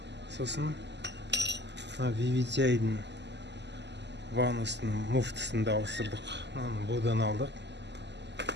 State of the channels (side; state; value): left; late; 0.50 ms